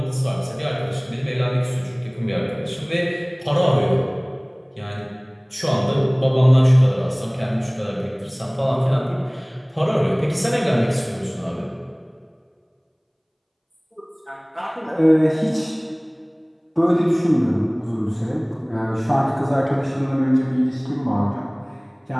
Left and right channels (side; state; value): both; identical; correlation 1.00